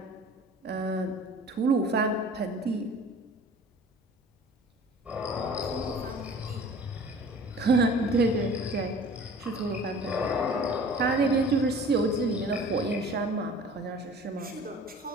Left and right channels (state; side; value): normal; both; correlation 0.45